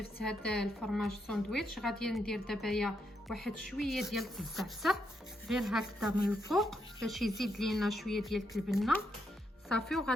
هذا الفرماج ساندويتش غادي ندير دابا واحد شويه ديال الزعتر غير هكذا من الفوق باش يزيد لينا شويه ديال البنه صافي.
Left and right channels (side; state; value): both; normal; correlation 0.80